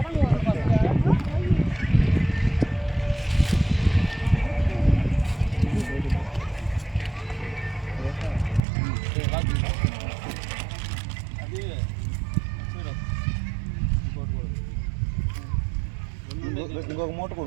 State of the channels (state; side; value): drops out; left; at 8.6 s